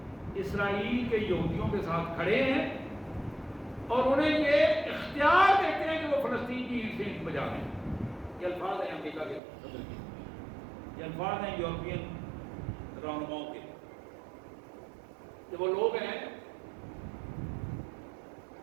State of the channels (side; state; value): left; drops out; at 9.4 s